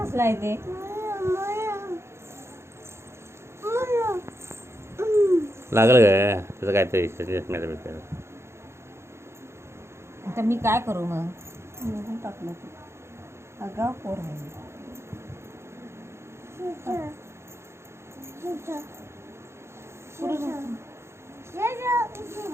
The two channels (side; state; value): left; late; 0.13 ms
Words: आहे ते लागल काय त्याचं काय तरी चष्म्याचं आता मी काय करू मग टाकलं अगा पोर आहे